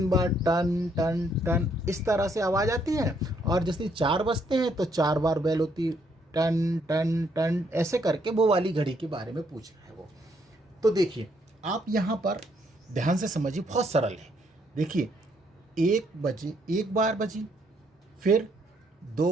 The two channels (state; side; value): normal; both; correlation 0.71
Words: बार टन टन टन, इस तरह से आवाज़ आती है, और जैसे 4 बजते हैं तो 4 बार बेल होती है, टन टन टन, ऐसे करके वो वाली घड़ी के बारे में पूछ रहा है वो। तो देखिए आप यहाँ पर ध्यान से समझिए, बहुत सरल है। देखिए 1 बजे 1 बार बजी, फिर 2